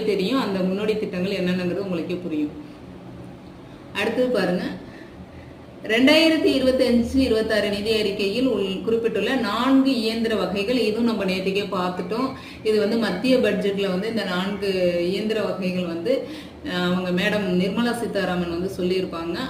தெரியும். அந்த முன்னோடி திட்டங்கள் என்னென்னங்கிறது உங்களுக்கே புரியும். அடுத்தது பாருங்க, 2025-26 நிதி அறிக்கையில் குறிப்பிட்டுள்ள 4 இயந்திர வகைகள். இதுவும் நம்ம நேற்றுக்கே பார்த்துட்டோம். இது வந்து மத்திய பட்ஜெட்ல வந்து இந்த 4 இயந்திர வகைகள் வந்து அவங்க மேடம் நிர்மலா சீதாராமன் வந்து சொல்லியிருப்பாங்க.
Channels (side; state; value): both; identical; correlation 1.00